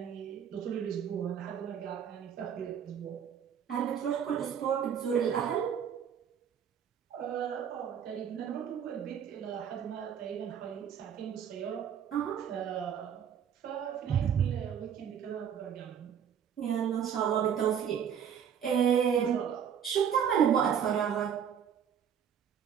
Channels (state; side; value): quieter; left; 8.3 dB